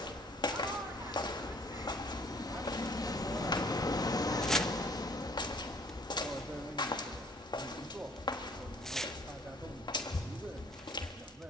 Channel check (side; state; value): both; normal; correlation 0.58